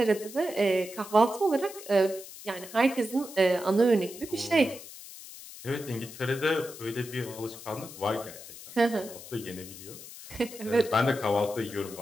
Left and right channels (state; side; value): noise; left; hiss, 15 dB below the sound